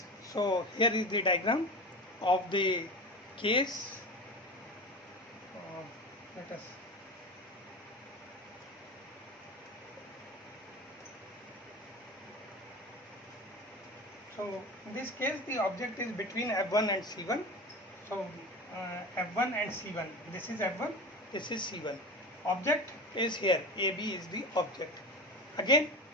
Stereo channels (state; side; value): normal; both; correlation 0.28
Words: so here is the diagram of the case. Let us so in this case, the object is between F1 and C1. So F1 and C1, this is F1, this is C1. Object is here, AB is the object. Again,